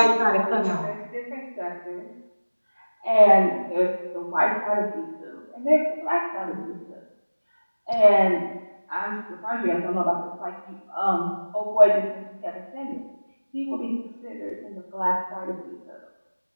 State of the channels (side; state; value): both; inverted; correlation -1.00